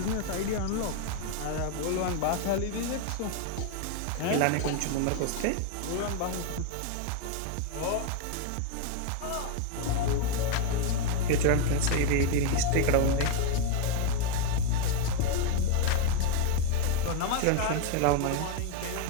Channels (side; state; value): both; different; correlation 0.01